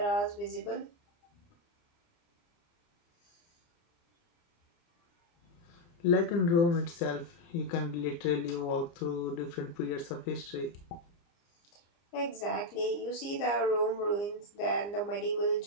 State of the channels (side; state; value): right; late; 29 ms